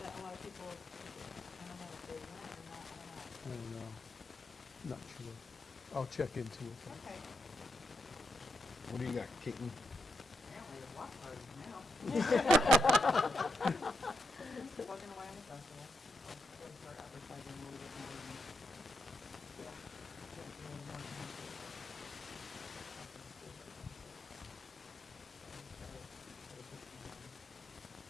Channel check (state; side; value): normal; both; correlation 0.82